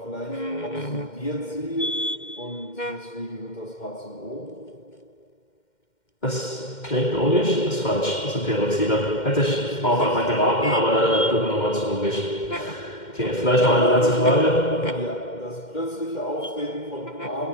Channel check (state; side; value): late; right; 2.1 ms